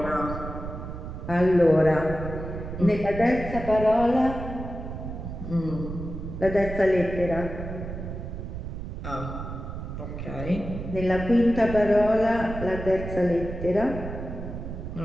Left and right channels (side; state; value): right; noise; rumble, 8 dB below the sound